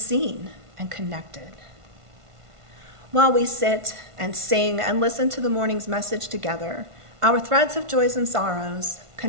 and connected. While we sit and sing and listen to the morning's message together, our threads of joys and sorrows,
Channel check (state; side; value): late; left; 1.5 ms